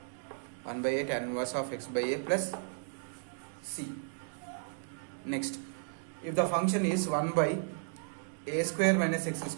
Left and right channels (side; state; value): left; silent; digital silence